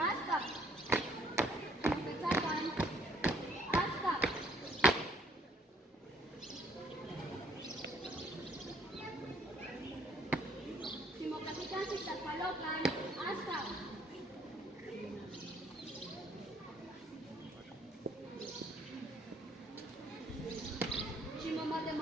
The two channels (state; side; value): normal; both; correlation 0.63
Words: Simotecacan, hasta. Simocapican, sitacpalocan, hasta.